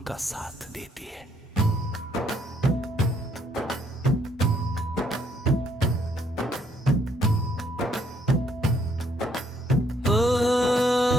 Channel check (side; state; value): both; normal; correlation 0.69